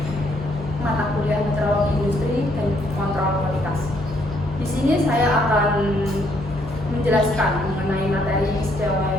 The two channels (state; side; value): normal; both; correlation 0.70